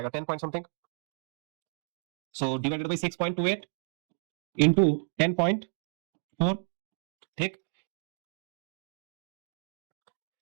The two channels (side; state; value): left; silent; 56 dB below the other